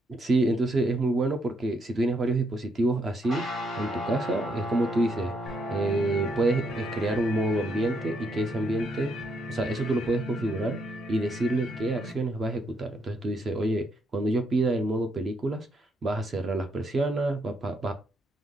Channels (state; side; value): normal; both; correlation 0.75